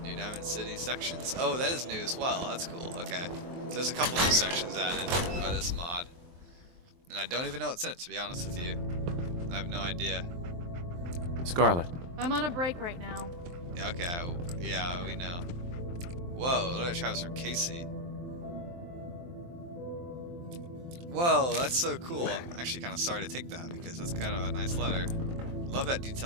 New Diamond City sections. Oh, that is new as well. That's cool. Okay. So there's a couple new sections added by this mod. And I don't even know what's in it, to be honest with you. I have no idea. Scarlet. I'm on a break right now. Okay, yeah, we know. Whoa, look at Travis from Casey. Whoa, that's so cool. I'm actually kind of sorry to take that because that's kind of a nice letter. Love that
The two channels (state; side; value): late; left; 23 ms